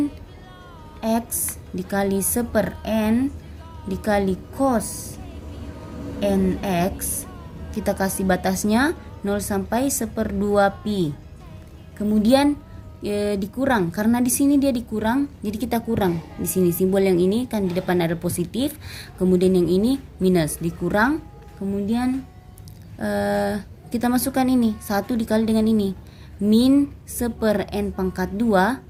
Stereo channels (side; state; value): both; identical; correlation 1.00